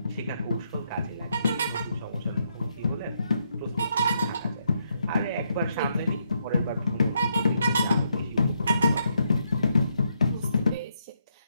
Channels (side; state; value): both; inverted; correlation -0.77